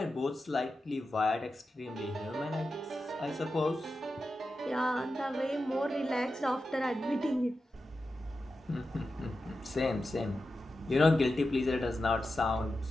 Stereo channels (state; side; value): normal; both; correlation 0.91